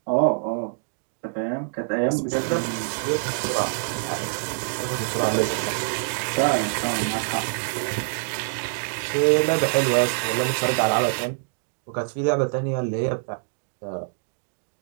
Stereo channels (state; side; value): silent; left; digital silence